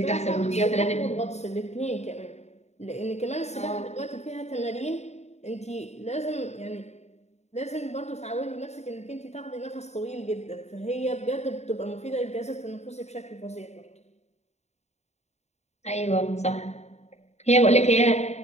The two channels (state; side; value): late; right; 0.32 ms